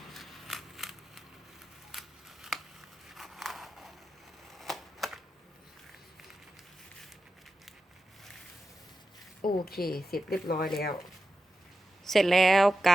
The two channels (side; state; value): both; normal; correlation 0.91